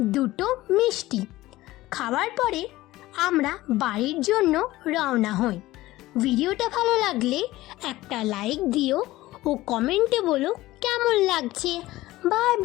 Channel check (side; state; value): right; quieter; 17.4 dB